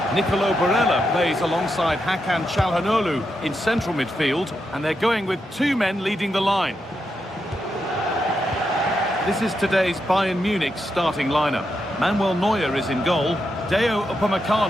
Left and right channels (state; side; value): normal; both; correlation 0.84